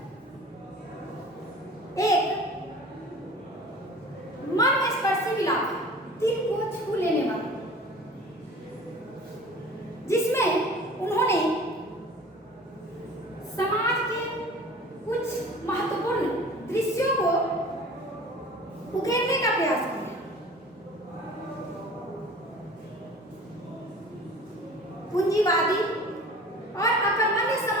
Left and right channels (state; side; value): normal; both; correlation 0.43